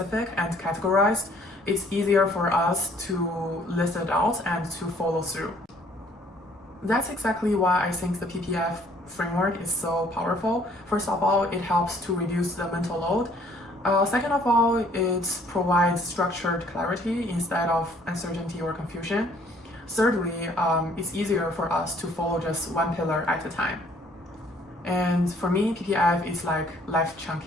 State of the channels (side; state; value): both; normal; correlation 0.60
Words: and categorized, it's easier for us to list it out and to follow through. That's exactly why I think the PPF framework is so powerful. First of all, it helps to reduce the mental load. Second of all, it provides structured clarity instead of uncertainty or confusion. Thirdly, it's easier for us to follow just one pillar at a time. And for me, PPF is like life